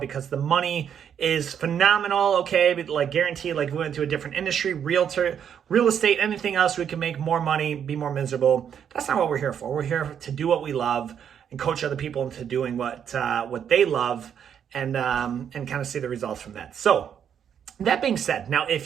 the money is phenomenal, okay, but like guaranteed, like we went to a different industry, real estate, anything else, we can make more money, be more miserable. That's not what we're here for. We're here to do what we love and coach other people into doing what they love, and kind of see the results from that. So that being said, now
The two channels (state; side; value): quieter; left; 8.4 dB